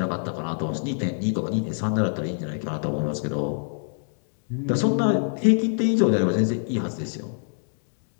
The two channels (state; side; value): silent; right; digital silence